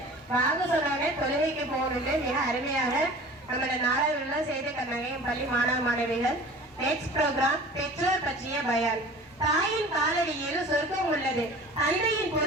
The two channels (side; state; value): both; normal; correlation 0.42